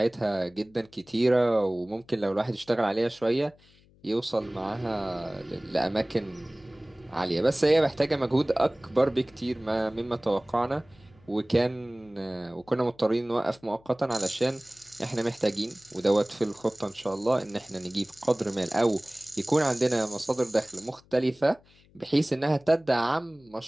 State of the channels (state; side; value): noise; left; hum, 29 dB below the sound